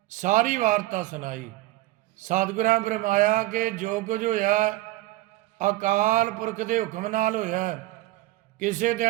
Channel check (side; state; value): left; quieter; 17.6 dB